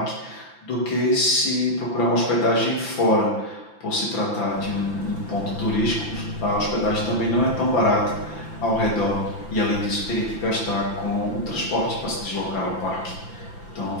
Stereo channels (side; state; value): right; late; 5.9 ms